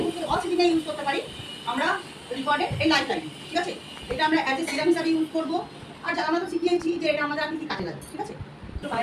অক্সিজেনে ইউজ করতে পারি আমরা রিকর্ডেড এই লাইফ লাইন। ঠিক আছে, এটা আমরা অ্যাজ এ সিরাম হিসাবে ইউজ করবো। আর আমরা তো শিখিয়েছি যে এটা আমাদের আর কি কাজে লাগে। ঠিক আছে, তো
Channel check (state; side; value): identical; both; correlation 1.00